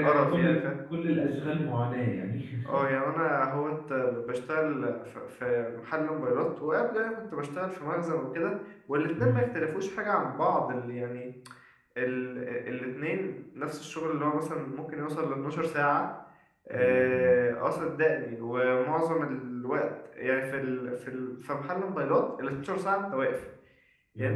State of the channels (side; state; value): both; identical; correlation 1.00